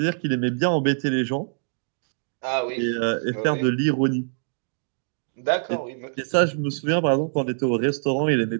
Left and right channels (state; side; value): silent; left; digital silence